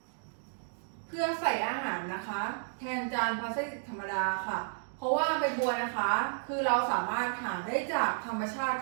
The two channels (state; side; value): silent; left; digital silence